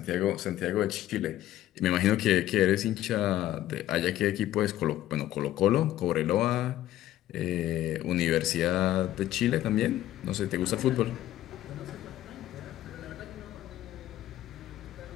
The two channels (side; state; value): right; quieter; 13.5 dB